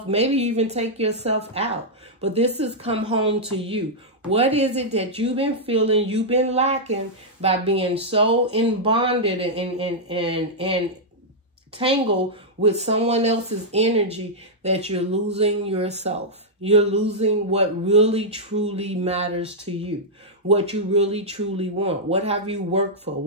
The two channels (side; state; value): both; normal; correlation -0.07